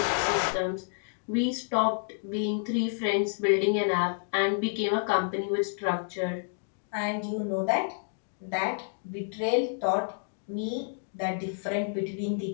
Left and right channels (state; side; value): silent; right; digital silence